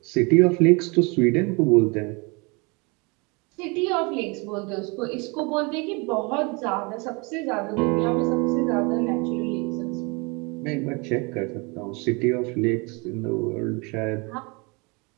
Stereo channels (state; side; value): quieter; left; 29.3 dB